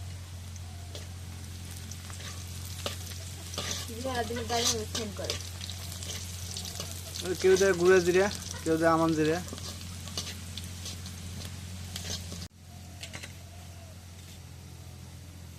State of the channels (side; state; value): both; identical; correlation 1.00